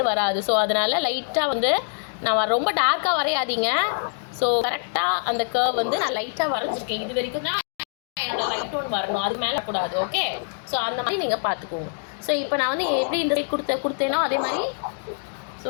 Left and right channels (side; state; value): right; silent; digital silence